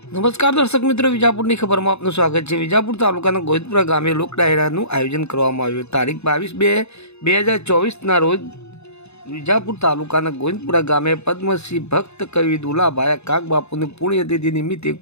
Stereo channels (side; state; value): right; late; 0.80 ms